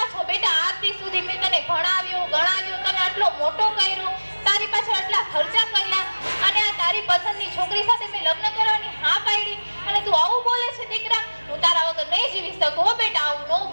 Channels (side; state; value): both; inverted; correlation -1.00